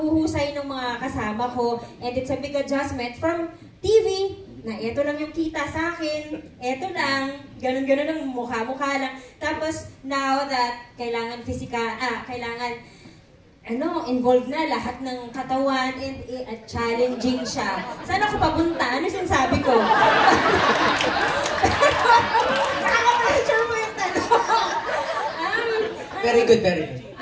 ng mga kasama ko and it's a big adjustment from TV na eto lang yung kita sa akin, eto lang, ganun-ganun ang mukha-mukha lang. Tapos, now that kailangan kailangan, involved na lahat ng katawan and challenging siya. Saan ako papunta? Ano sinasabi ko? Nakaka-pressure mo yung tanong. Very good, very good.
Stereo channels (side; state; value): both; identical; correlation 1.00